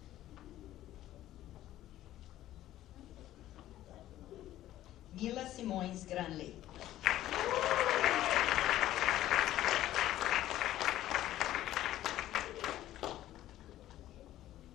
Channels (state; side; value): quieter; right; 13.8 dB